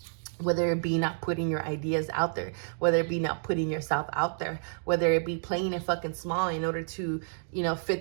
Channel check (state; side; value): silent; left; digital silence